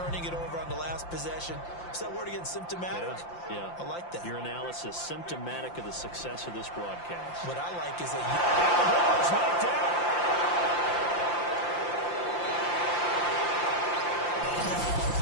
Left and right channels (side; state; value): right; late; 5.8 ms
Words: it over on the last possession. Is that word again, symptomatic? Yeah. I like that. Your analysis, symptomatic of the success of this broadcast. What I like is that And the ball is knocked out.